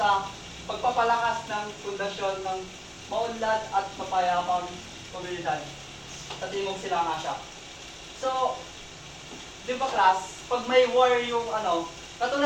pagpapalakas ng pundasyon ng maunlad at mapayapang komunidad sa Timog Silang Asya. So, di ba class, pag may war yung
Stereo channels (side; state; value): both; identical; correlation 1.00